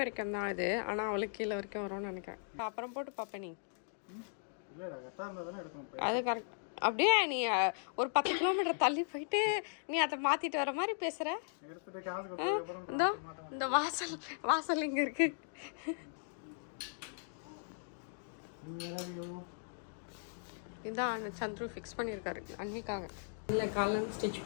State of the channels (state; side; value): silent; right; digital silence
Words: தான் இது, ஆனால் அவளுக்கு கீழே வரைக்கும் வரும்னு நினைக்கிறேன். அப்புறம் போட்டு பார்ப்பேன் நீ. அது கரெக்ட். அப்படியே நீ ஒரு 10 கிலோமீட்டர் தள்ளி போயிட்டு நீ அதை மாற்றிட்டு வர மாதிரி பேசுகிற. இந்த வாசல் இங்கே இருக்கு. இதான் சந்துரு ஃபிக்ஸ் பண்ணியிருக்காரு அன்னிக்காக. இல்லை காலையில் ஸ்டிச்